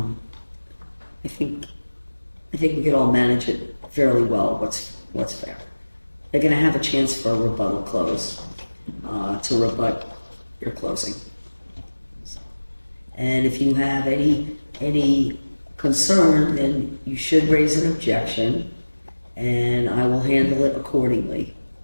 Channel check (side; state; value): both; inverted; correlation -1.00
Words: think we could all manage it fairly well. What's fair? They're going to have a chance for a rebuttal close to rebut your closing. And if you have any concern, then you should raise an objection, and I will handle it accordingly.